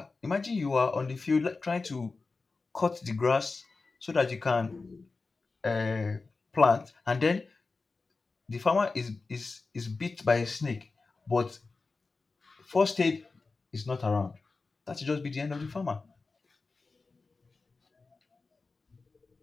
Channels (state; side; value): quieter; right; 4.0 dB